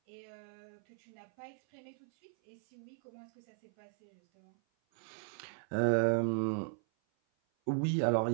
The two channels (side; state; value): left; silent; 53 dB below the other